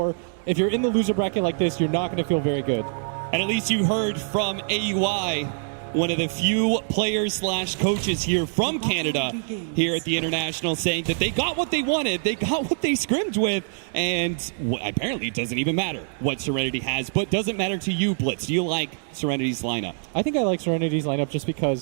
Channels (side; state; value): left; silent; digital silence